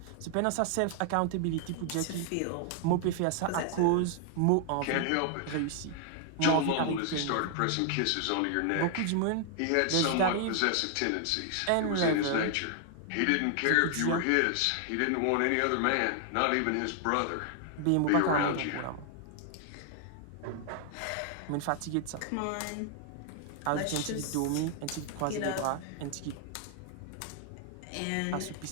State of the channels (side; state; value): both; different; correlation 0.00